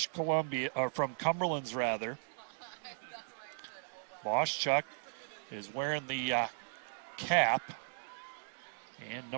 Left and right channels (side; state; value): left; silent; digital silence